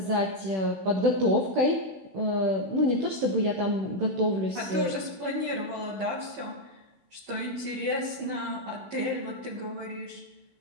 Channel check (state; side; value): late; left; 16 ms